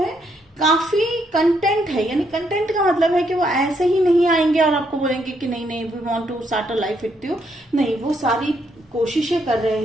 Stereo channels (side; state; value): both; normal; correlation 0.75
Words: काफी कंटेंट है। यानी कंटेंट का मतलब है कि वो ऐसे ही नहीं आएंगे और आपको बोलेंगे कि नहीं नहीं we want to start a life with you, नहीं, वो सारी कोशिशें कर